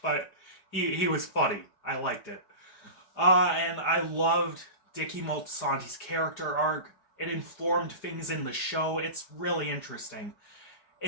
but he was funny. I liked it. And I loved Dickie Moltisanti's character arc. It informed things in the show. It's really interesting.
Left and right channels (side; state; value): right; late; 4.9 ms